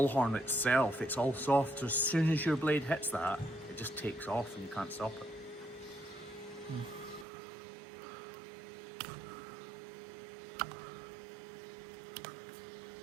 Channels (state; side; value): drops out; left; at 7.2 s